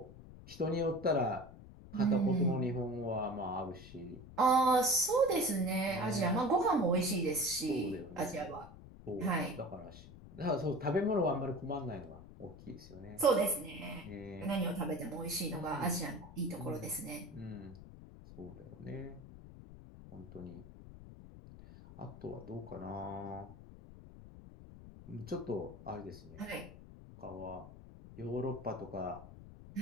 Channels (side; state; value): left; noise; rumble, 16 dB below the sound